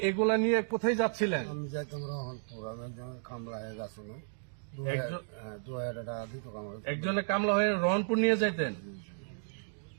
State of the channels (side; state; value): left; silent; digital silence